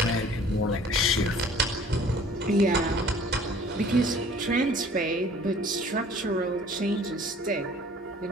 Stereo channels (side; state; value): both; normal; correlation 0.51